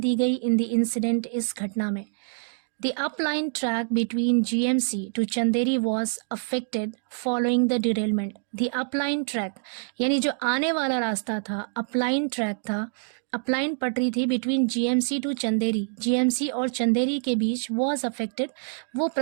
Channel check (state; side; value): silent; left; digital silence